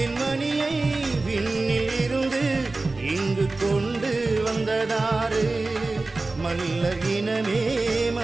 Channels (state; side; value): quieter; left; 3.4 dB